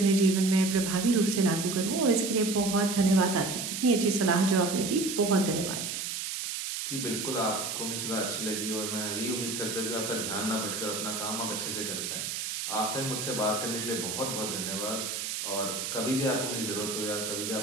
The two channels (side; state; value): right; noise; hiss, 4 dB below the sound